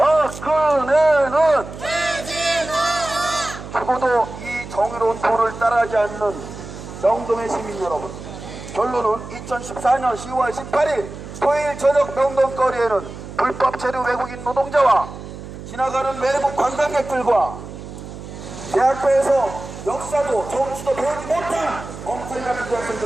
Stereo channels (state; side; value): noise; right; hum, 12 dB below the sound